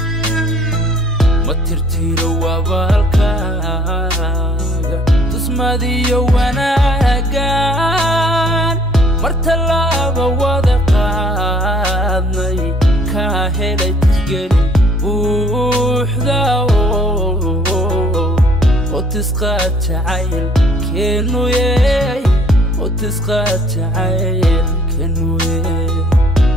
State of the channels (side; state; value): both; normal; correlation 0.58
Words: ma tirtiro wabaalkaaga tusmadiyo wanaagan mar tallaaba wada qaadnay kaa helay tixgelin buuxda oo tisqaad jacaylkeenu oo tisqaad jacaylkeenu